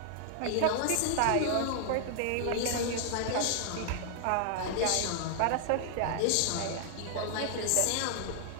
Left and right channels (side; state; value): both; different; correlation 0.00